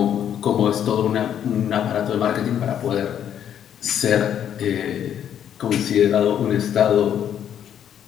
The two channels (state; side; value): quieter; right; 9.5 dB